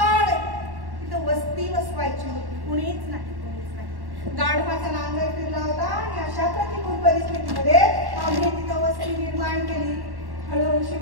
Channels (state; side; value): late; left; 1.1 ms